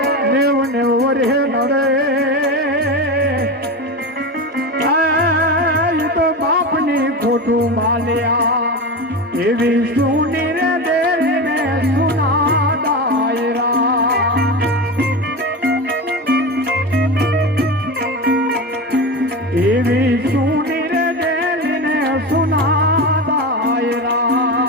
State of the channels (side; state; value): both; normal; correlation 0.22